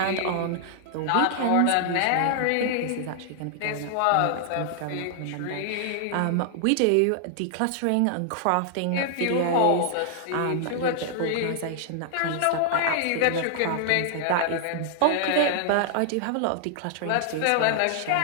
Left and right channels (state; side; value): different; both; correlation -0.01